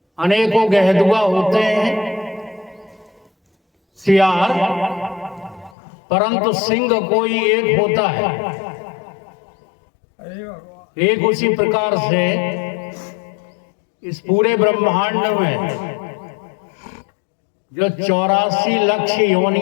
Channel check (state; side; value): drops out; right; at 5.8 s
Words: अनेकों गहदुआ होते हैं, सियार, परंतु सिंह कोई एक होता है। एक उसी प्रकार से इस पूरे ब्रह्मांड में जो 84 लाख